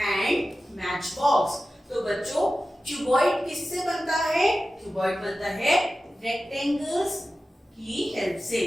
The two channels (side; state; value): both; normal; correlation 0.94